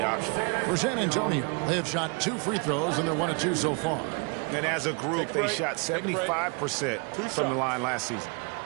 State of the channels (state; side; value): quieter; left; 33.5 dB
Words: option. For San Antonio, they have shot 2 free throws, and they're 1 of 2 so far. And as a group, they shot 75% from the line last season.